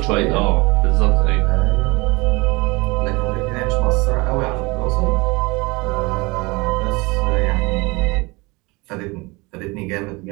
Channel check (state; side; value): quieter; left; 25.2 dB